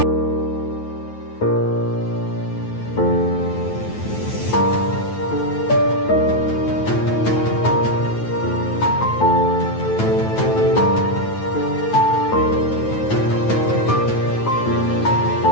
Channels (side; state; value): right; late; 9.2 ms